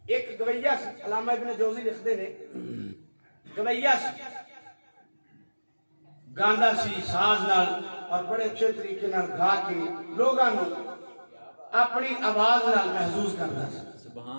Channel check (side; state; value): both; inverted; correlation -1.00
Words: ایک گویہ علامہ ابن جوزی لکھتے نے گویہ گاندا سی ساز نال اور بڑے اچھے طریقے نال گا کے لوگاں نو اپنی آواز نال محسوس کرتا